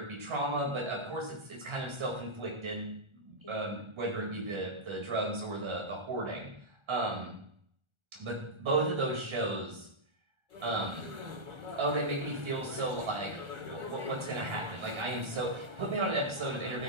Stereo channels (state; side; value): late; left; 1.3 ms